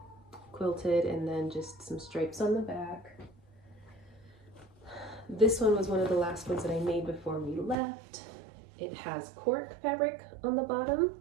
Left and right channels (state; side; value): drops out; left; at 7.8 s